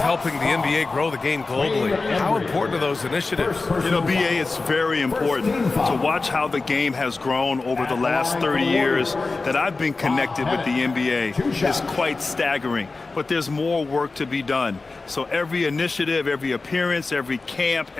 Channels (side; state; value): right; quieter; 3.7 dB